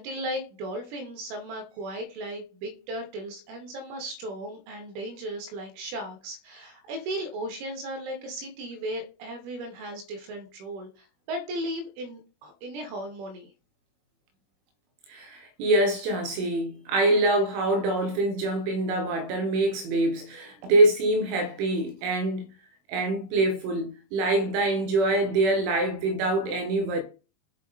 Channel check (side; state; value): left; late; 21 ms